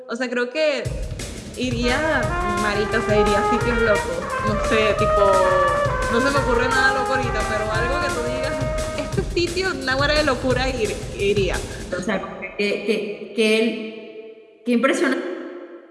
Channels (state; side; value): identical; both; correlation 1.00